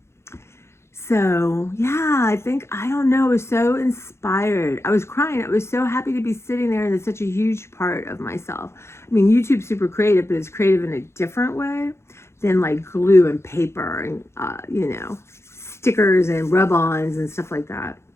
So, yeah, I think, I don't know, I was so inspired. I was crying. I was so happy to be sitting there, and it's such a huge part of myself. I mean, YouTube's super creative, but it's creative in a different way than like glue and paper and, you know, stickers and rub-ons and stuff like that.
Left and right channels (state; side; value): late; right; 0.13 ms